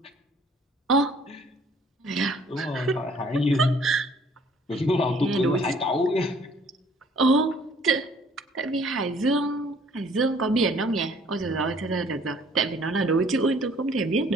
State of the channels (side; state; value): both; normal; correlation 0.58